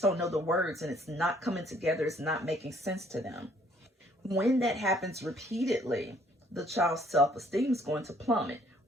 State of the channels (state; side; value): normal; both; correlation 0.62